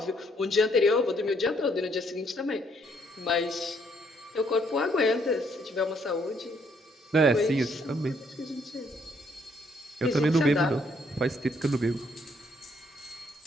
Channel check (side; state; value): both; normal; correlation 0.69